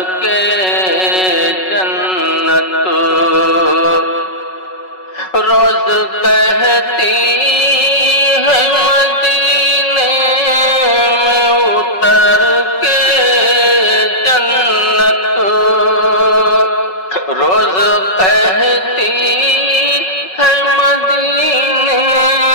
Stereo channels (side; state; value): right; late; 5.4 ms